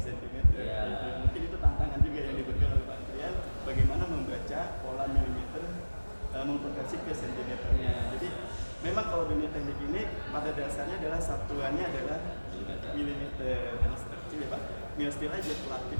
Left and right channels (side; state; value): both; inverted; correlation -1.00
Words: Gitu. Mungkin itu tantangan juga yang diberikan oleh Pak Andrian, bagaimana membaca pola milimeter mengkonversi ke sentimeternya. Jadi memang kalau dunia teknik ini pada dasarnya adalah satuannya adalah milimeter. Karena kecil ya Pak, mil steel aja pelat